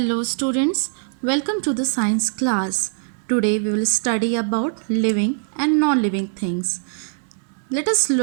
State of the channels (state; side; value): silent; left; 64 dB below the other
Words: students, welcome to the science class. Today we will study about living and non-living things. Let us